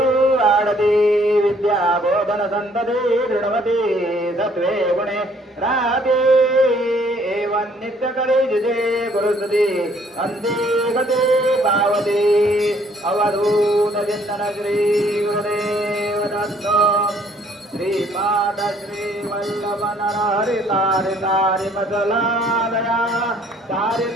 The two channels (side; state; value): both; normal; correlation 0.62